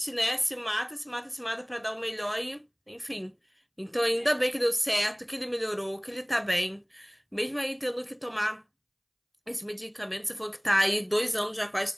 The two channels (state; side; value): identical; both; correlation 1.00